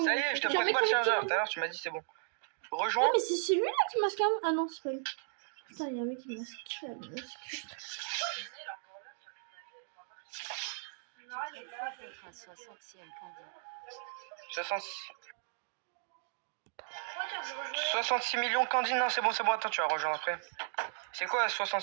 Ça y est, je te prête pas le chargeur. Tout à l'heure, tu m'as dit c'est bon. Non, Rejoins. mais c'est celui-là qui masque un. Ah non, c'est pas lui. Putain, il y a un mec qui masque. Faites un 60e candy. 66 millions Candy. Non, c'est bon, attends, tu vas rejoindre après. C'est quoi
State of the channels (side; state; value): left; silent; digital silence